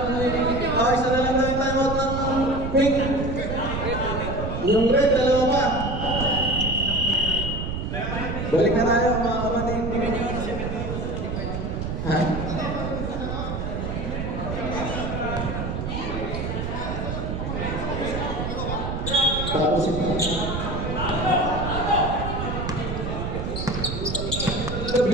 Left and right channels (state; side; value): noise; right; rumble, 4 dB below the sound